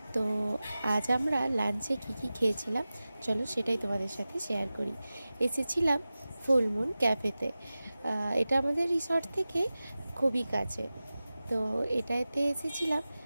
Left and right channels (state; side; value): inverted; both; correlation -0.95